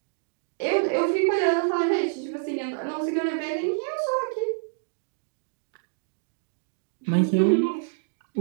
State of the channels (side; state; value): left; silent; digital silence